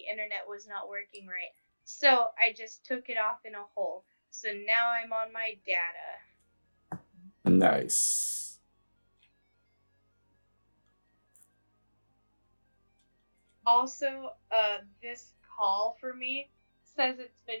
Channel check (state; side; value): inverted; both; correlation -1.00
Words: internet was not working right. So I just took it off in a hole. So now I'm on my data. Nice. Also, this call for me says it's